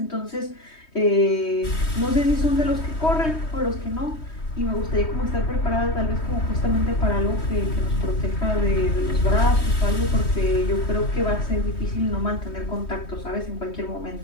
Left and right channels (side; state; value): right; late; 3.2 ms